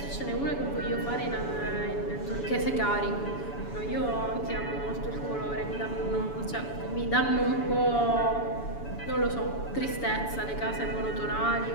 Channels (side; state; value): right; late; 7.0 ms